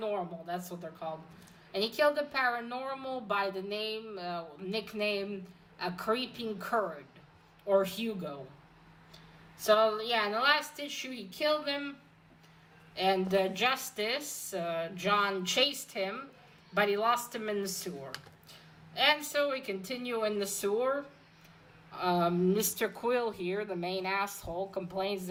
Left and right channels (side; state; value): both; identical; correlation 1.00